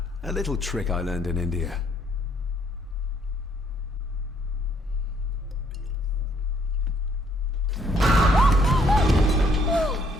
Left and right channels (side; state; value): both; normal; correlation 0.67